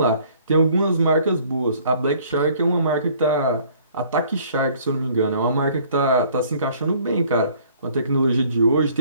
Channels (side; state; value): both; inverted; correlation -0.57